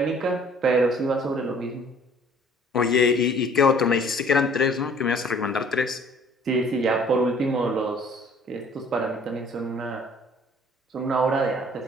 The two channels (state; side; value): normal; both; correlation 0.55